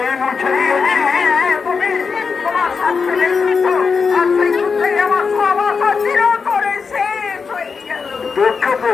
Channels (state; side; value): quieter; right; 5.3 dB